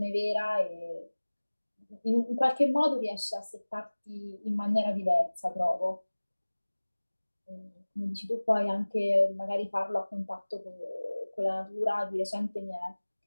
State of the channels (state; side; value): inverted; both; correlation -1.00